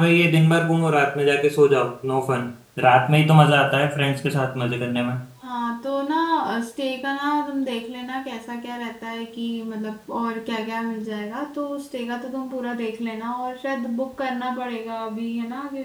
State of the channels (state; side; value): identical; both; correlation 1.00